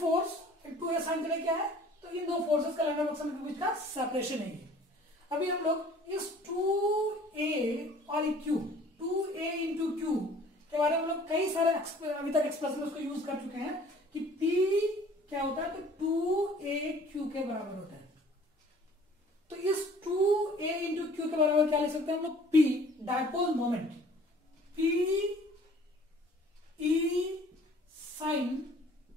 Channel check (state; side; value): normal; both; correlation 0.52